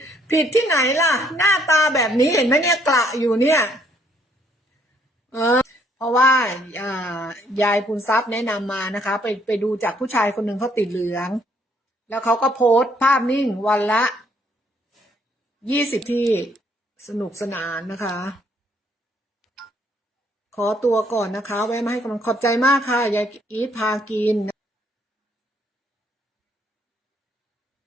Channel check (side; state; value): both; normal; correlation 0.67